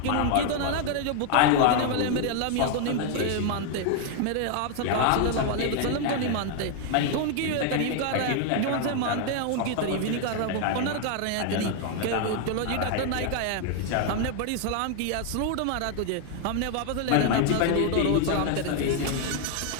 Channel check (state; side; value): different; both; correlation 0.00